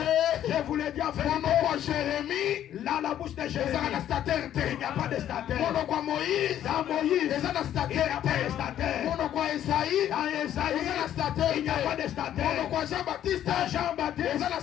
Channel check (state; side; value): quieter; right; 11.1 dB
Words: Je vous l'ai dit en monoko vérité. ya jérémi Là, la bouche de Jésus, ezalaka na statere te il n'y a pas de statue. monoko ya moïse Dans Moïse, eza na il n'y statere a pas de te statue. monoko ya esaïe Dans Esaïe, eza na statere il n'y a pas de te statue. monoko ya jean baptiste Dans Jean-Baptiste, eza na